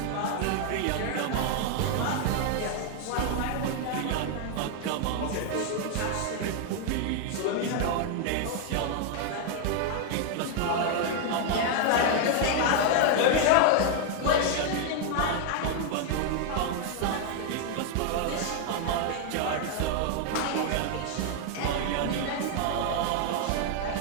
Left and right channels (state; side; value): different; both; correlation 0.00